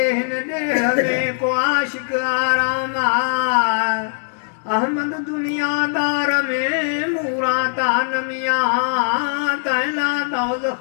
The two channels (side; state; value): right; silent; digital silence